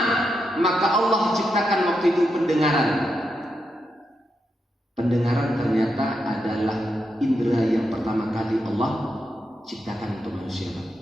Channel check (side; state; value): both; normal; correlation 0.84